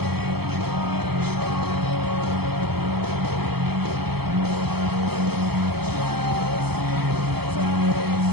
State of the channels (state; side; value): late; left; 0.97 ms